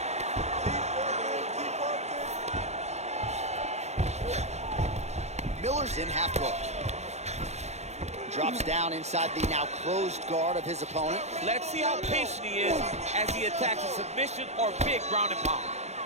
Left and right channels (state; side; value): late; left; 0.32 ms